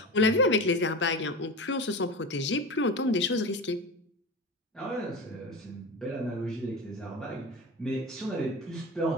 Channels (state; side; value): normal; both; correlation 0.27